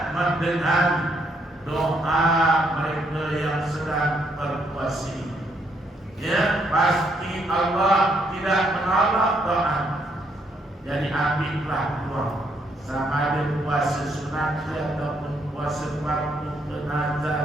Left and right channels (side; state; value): both; normal; correlation 0.73